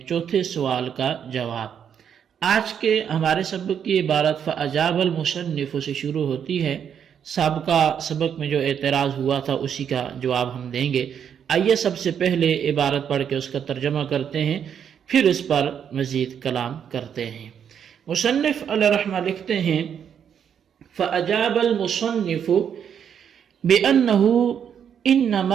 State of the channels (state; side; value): quieter; left; 8.2 dB